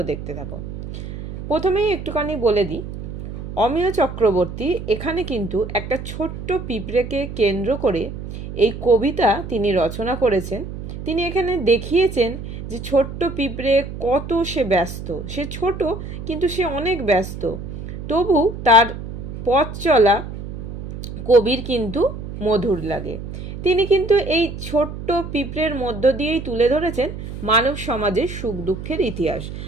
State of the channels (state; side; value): noise; right; hum, 9 dB below the sound